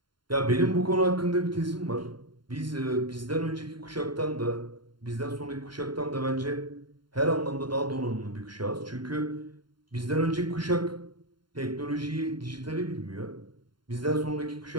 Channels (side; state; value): left; late; 0.72 ms